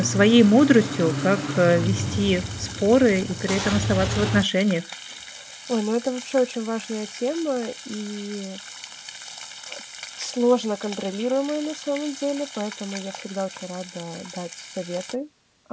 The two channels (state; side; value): identical; both; correlation 1.00